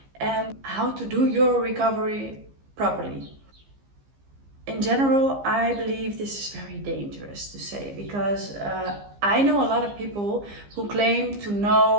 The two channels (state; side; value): late; left; 15 ms